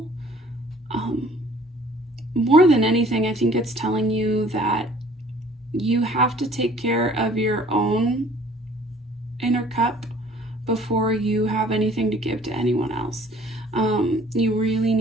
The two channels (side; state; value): both; normal; correlation 0.54